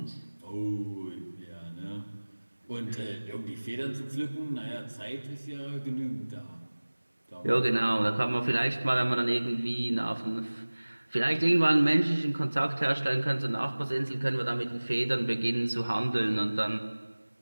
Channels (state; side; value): inverted; both; correlation -1.00